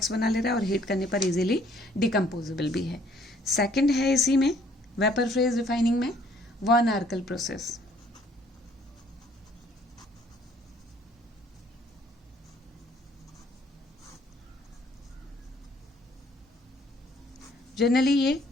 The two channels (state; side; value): normal; both; correlation 0.61